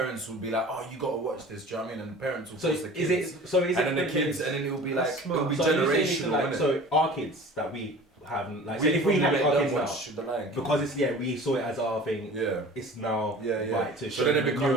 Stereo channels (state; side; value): normal; both; correlation 0.42